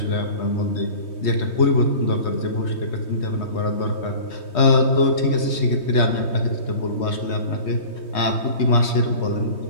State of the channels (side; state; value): right; late; 3.2 ms